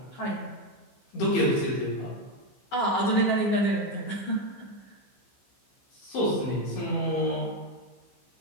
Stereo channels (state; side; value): late; right; 15 ms